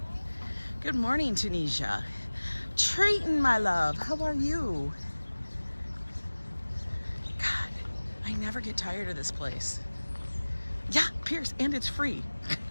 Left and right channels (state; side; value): inverted; both; correlation -1.00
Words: Good morning, Tunisia. Triton, my love, how are you? God, I never get tired of this place. Yeah, Pierce, and it's free.